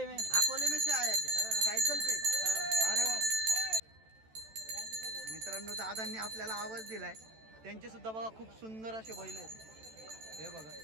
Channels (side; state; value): left; late; 14 ms